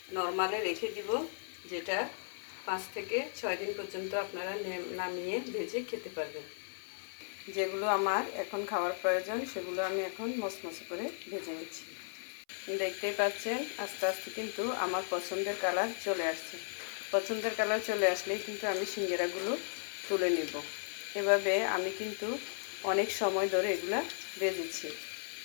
নর্মালে রেখে দিব, যেটা 5 থেকে 6 দিন পর্যন্ত আপনারা নামিয়ে ভেজে খেতে পারবেন। যেগুলো আমার এখন খাওয়ার প্রয়োজন সেগুলো আমি এখন মচমচে করে ভেজে নিচ্ছি। দেখতেই পাচ্ছেন আস্তে আস্তে কিন্তু আমার পছন্দের কালার চলে আসছে। পছন্দের কালার চলে আসলেই কিন্তু আমি সিঙ্গারাগুলো তুলে নেব। এভাবে আমি কিন্তু অনেক সময় ধরে এগুলা ভেজেছি,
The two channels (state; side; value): silent; right; 54 dB below the other